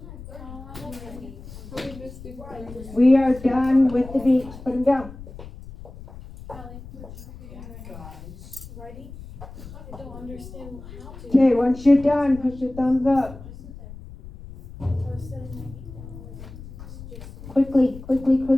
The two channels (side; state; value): left; noise; rumble, 15 dB below the sound